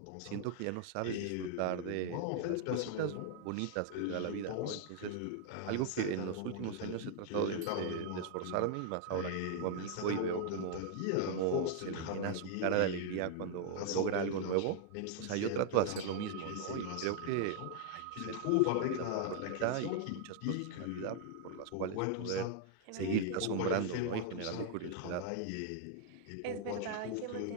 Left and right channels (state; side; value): different; both; correlation -0.01